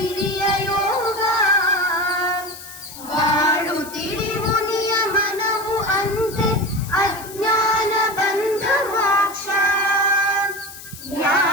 ಯೋಗ ಬಾಳು ತಿಳಿವು ನಿಯಮನವು ಅಂತೆ ಅಜ್ಞಾನ ಬಂಧ ಮೋಕ್ಷ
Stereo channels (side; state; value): left; noise; hiss, 15 dB below the sound